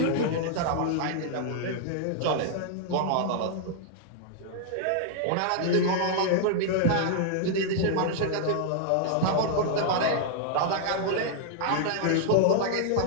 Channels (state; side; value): different; both; correlation -0.01